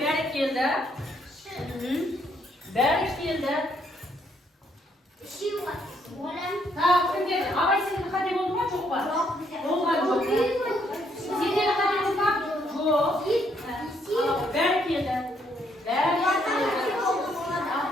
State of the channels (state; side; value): normal; both; correlation 0.71